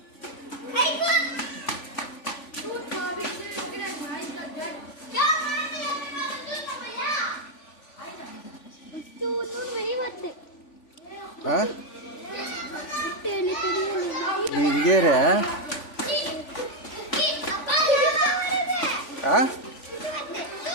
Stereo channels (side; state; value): right; late; 3.5 ms